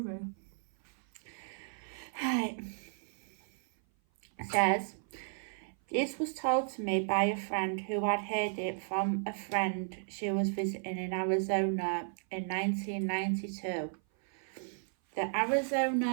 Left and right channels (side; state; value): left; silent; 55 dB below the other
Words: Right. It says, this was told to me by a friend who had heard it from a friend she was visiting in Arizona in 1992. The